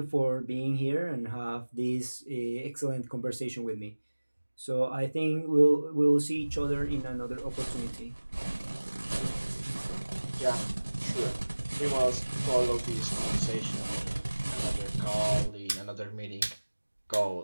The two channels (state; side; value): inverted; both; correlation -1.00